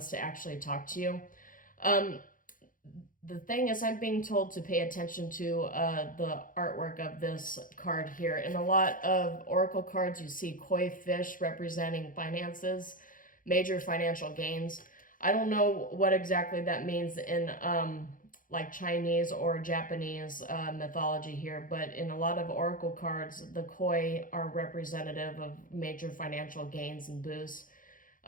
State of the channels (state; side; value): late; right; 0.39 ms